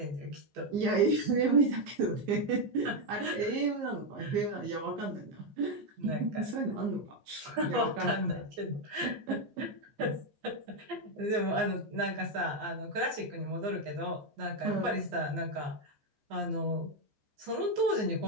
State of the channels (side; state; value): left; late; 14 ms